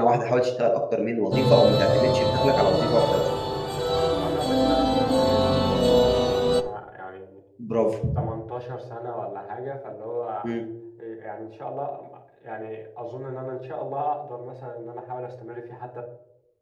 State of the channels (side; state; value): both; identical; correlation 1.00